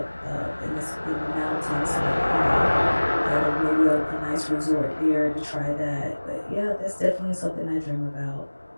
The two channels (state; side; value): inverted; both; correlation -1.00